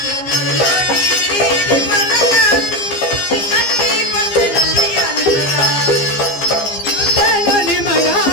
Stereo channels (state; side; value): late; right; 15 ms